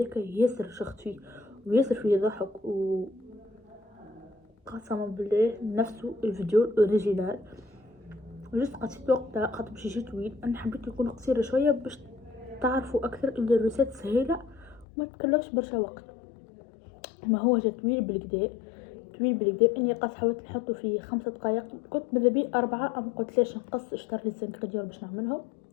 ياسر شخت فيه وياسر فيه ضحك و قسما بالله نفسه الفيديو الاوريجينال جست قصيت وقتها خاطر باش يجي طويل انا حبيت يكون قصير شويه باش تعرفوا اكثر ان الريسات سهيله وما تكلفش برشا وقت ما هو جا طويل بالكدا طويل بالكدا. اني قاس حاولت نحطه في 5 دقائق، كنت ماذا بي 4، ام قلت ليش نقص. اشتريت لي الزنكريدير باش نعملهم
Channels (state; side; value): drops out; right; at 14.9 s